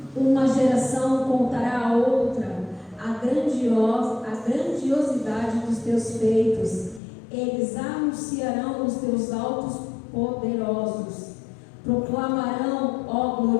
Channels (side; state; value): right; drops out; at 7.0 s